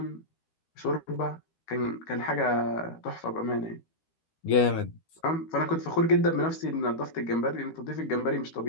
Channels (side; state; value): right; late; 13 ms